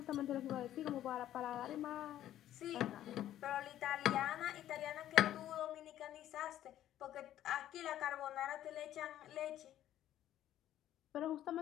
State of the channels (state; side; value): quieter; right; 12.3 dB